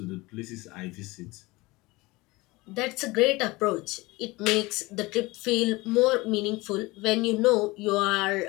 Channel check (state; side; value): quieter; right; 22.1 dB